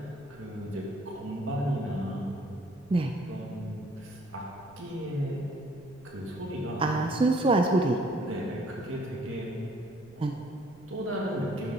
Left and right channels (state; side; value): noise; right; rumble, 25 dB below the sound